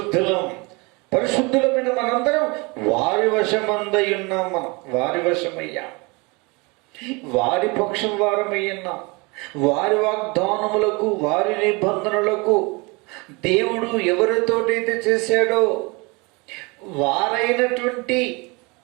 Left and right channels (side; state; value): left; quieter; 27.6 dB